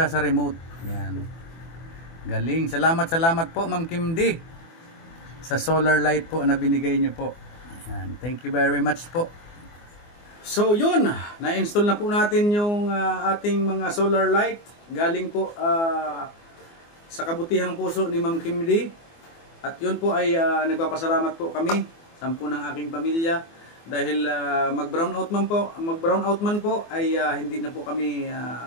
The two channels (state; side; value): late; right; 24 ms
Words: sa remote. Yan. Galing. Salamat po Ma'am Kim D sa solar light po na binigay niyo po. Yan. Thank you very much po. So yun, na-install na po natin yung ating mga solar light. Galing po sa kabutihang puso ni Ma'am Kim D. At yun po ay nagpapasalamat po kami, 10 ng aking pamilya, dahil mag-brownout man po ay hindi na po kami